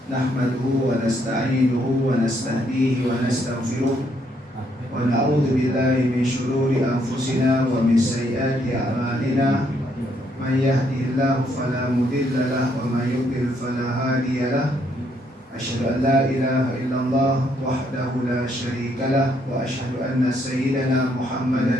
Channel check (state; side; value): normal; both; correlation 0.72